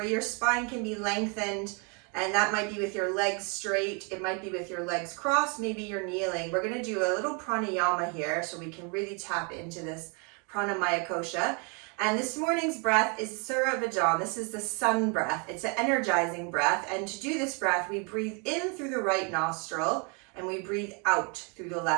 your spine can be lengthened, and that might be with your legs straight, it might be with your legs crossed, maybe you're kneeling. We're going to do a little pranayama here so we can really tap into this Pranamaya Kosha. And this morning's breath is Surya Bhajan. This is the sun breath. It's an energizing breath, and to do this breath, we breathe in through the right nostril and we breathe out through the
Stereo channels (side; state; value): left; quieter; 34.8 dB